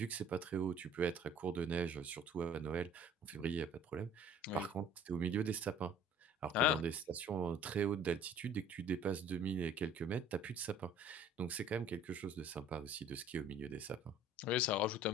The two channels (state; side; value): normal; both; correlation 0.51